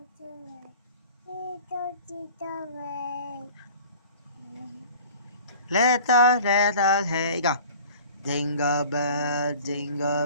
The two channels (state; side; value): inverted; both; correlation -0.45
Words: Little, hey, go. Jingle bell,